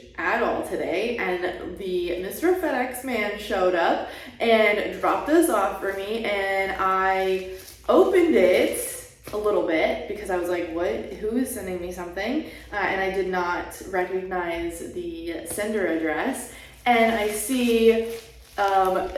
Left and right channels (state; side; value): identical; both; correlation 1.00